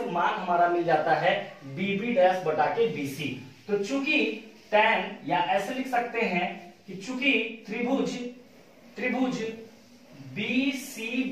मान हमारा मिल जाता है बी बी डैश बटा के बीसी। तो चूंकि tan, या ऐसे लिख सकते हैं कि चूंकि त्रिभुज बी सी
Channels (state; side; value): identical; both; correlation 1.00